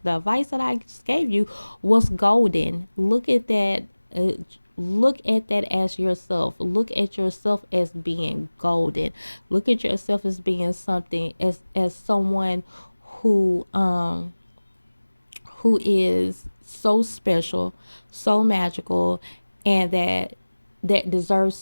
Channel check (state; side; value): inverted; both; correlation -1.00